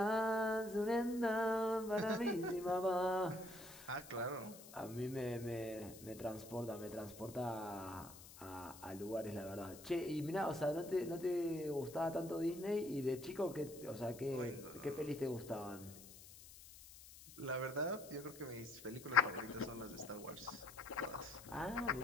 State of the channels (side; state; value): left; noise; hiss, 17 dB below the sound